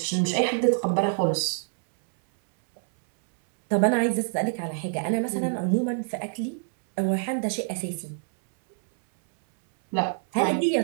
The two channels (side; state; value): left; silent; 61 dB below the other